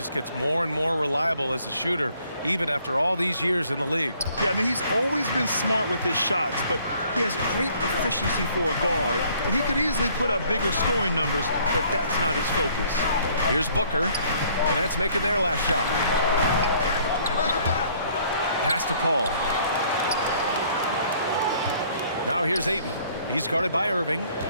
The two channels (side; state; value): both; inverted; correlation -0.61